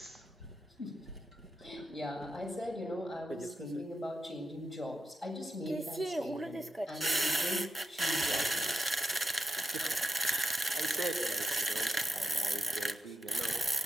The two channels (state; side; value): normal; both; correlation 0.85